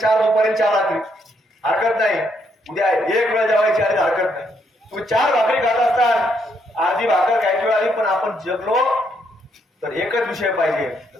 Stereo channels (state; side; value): normal; both; correlation 0.74